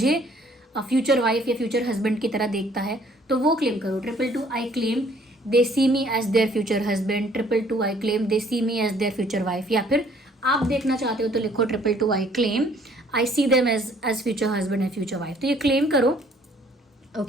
फ्यूचर वाइफ या फ्यूचर हस्बैंड की तरह देखता है, तो वो क्लेम करो। 222 I claim they see me as their future husband, 222 I claim they see me as their future wife. या फिर आप देखना चाहते हो तो लिखो 222 I claim I see them as future husband and future wife. तो ये क्लेम करो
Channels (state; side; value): normal; both; correlation 0.60